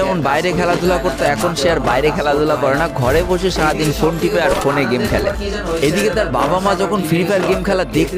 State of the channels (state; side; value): identical; both; correlation 1.00